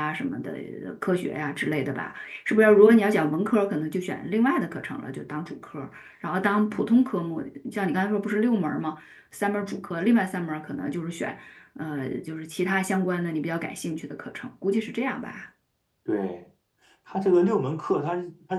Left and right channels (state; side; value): identical; both; correlation 1.00